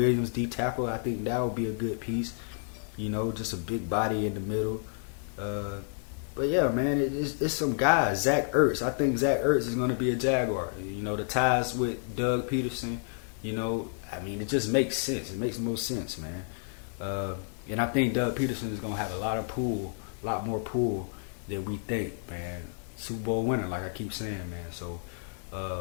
D tackle. I think that would be a good piece. You know, just a big body in the middle. But yeah, man, it's some guys. Zach Ertz. I think Zach Ertz is going to be a Jaguar. You know, the ties with Doug Peterson, you know, I mean, it just makes sense. It makes the most sense, man. And I think Doug Peterson is going to have a lot more pull than we think, man. Super Bowl winner, like I keep saying, man. So,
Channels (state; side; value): silent; right; 58 dB below the other